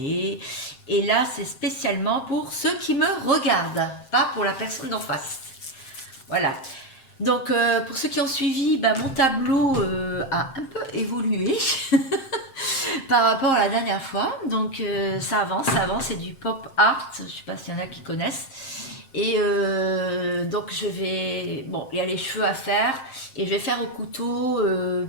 Et là, c'est spécialement pour ceux qui me regardent, pas pour la personne d'en face. Voilà. Donc, pour ceux qui ont suivi, bah, mon tableau a un peu évolué par rapport à la dernière fois. Donc, ça avance, c'est du pop art. Je ne sais pas s'il y en a qui connaissent. Et donc je vais... Bon, il y a les cheveux à faire. Et je vais faire au couteau.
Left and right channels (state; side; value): late; right; 7.5 ms